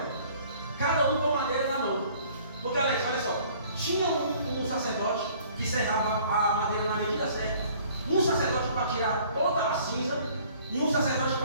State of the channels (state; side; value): inverted; both; correlation -0.55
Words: Cada um com madeira na mão. Porque, Alex, olha só. Tinha um sacerdote que serrava a madeira na medida certa. Um sacerdote para tirar toda a cinza e um sacerdote